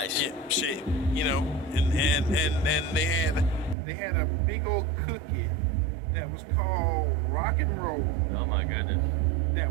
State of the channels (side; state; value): left; drops out; at 3.8 s